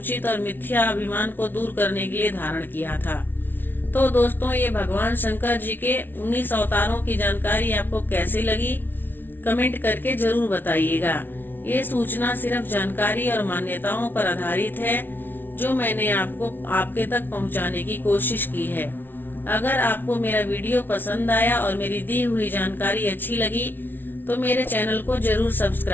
और मिथ्या अभिमान को दूर करने के लिए धारण किया था। तो दोस्तों, ये भगवान शंकर जी के 19 अवतारों की जानकारी आपको कैसी लगी कमेंट करके जरूर बताइएगा। ये सूचना सिर्फ जानकारी और मान्यताओं पर आधारित है जो मैंने आपको आपके तक पहुंचाने की कोशिश की है। अगर आपको मेरा वीडियो पसंद आया और मेरी दी हुई जानकारी अच्छी लगी तो मेरे चैनल को जरूर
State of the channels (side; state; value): right; late; 0.096 ms